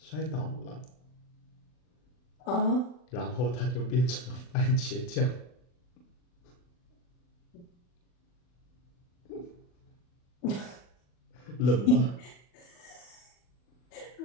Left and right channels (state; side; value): late; right; 40 ms